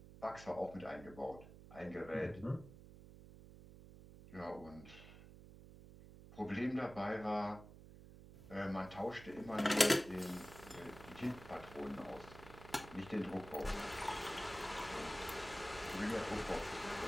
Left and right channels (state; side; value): noise; right; hum, 16 dB below the sound